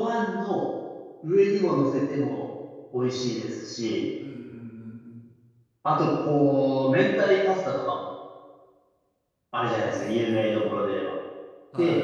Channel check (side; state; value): both; identical; correlation 1.00